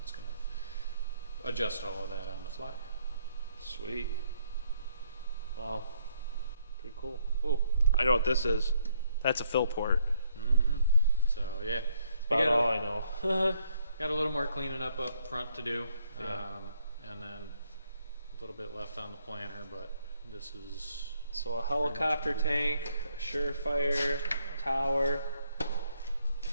It's going to adjust all of that on the fly. Sweet. Wow. Pretty cool. Oh, I know what this is. That's a fill port. Mm-hmm. So yeah, That's about all I know. Got a little more cleaning up front to do, Yeah. and then a little bit left on the planter, but this is So a helicopter tank, a surefire tower,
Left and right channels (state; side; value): inverted; both; correlation -0.70